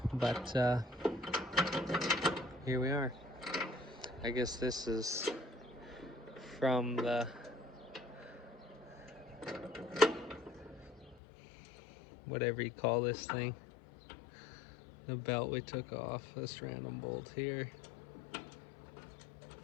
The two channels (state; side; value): drops out; right; at 11.2 s